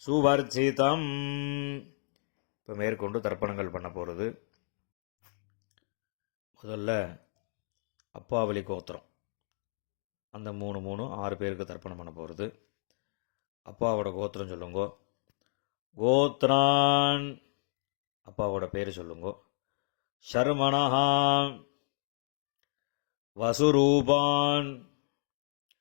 சுவர்ச்சிதம். இப்போ மேற்கொண்டு தர்ப்பணங்கள் பண்ண போகிறது. முதல்ல அப்பாவளி கோத்திரம், அந்த 6 பேருக்கு தர்ப்பணம் பண்ண போகிறது. அப்பாவோட கோத்திரம் சொல்லுங்கோ. கோத்ரான், அப்பாவோட பேர் சொல்லுங்கோ. ஷர்மணஹா வசுரூபான்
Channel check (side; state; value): right; silent; digital silence